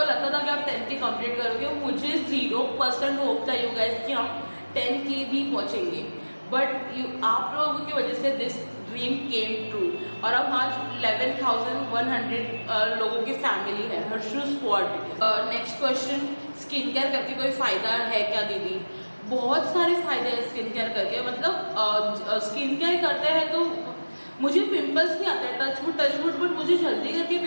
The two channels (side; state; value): both; inverted; correlation -1.00